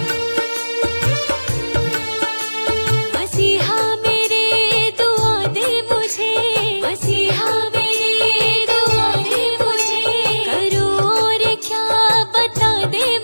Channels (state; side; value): inverted; both; correlation -1.00